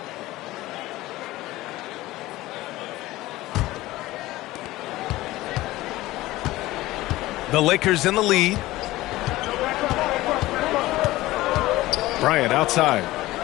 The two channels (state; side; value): quieter; right; 17.7 dB